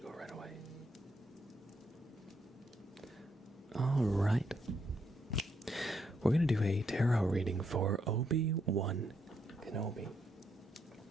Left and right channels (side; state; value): both; normal; correlation 0.76